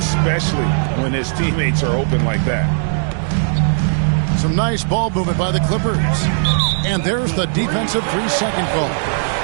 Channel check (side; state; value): left; silent; digital silence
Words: when his teammates are open like that. Some nice ball movement by the Clippers. And there's the defensive 3-second call.